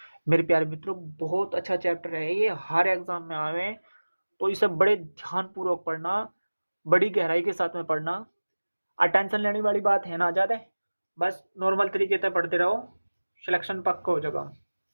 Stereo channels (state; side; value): inverted; both; correlation -1.00